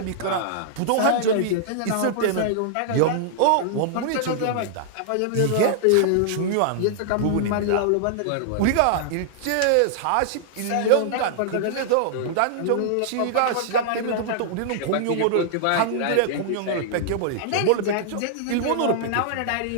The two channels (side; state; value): both; different; correlation -0.01